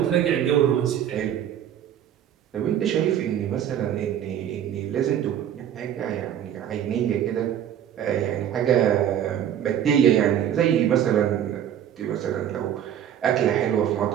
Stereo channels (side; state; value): left; quieter; 10.0 dB